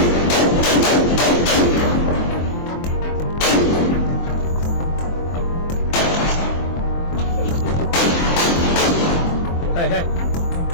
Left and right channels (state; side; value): late; right; 23 ms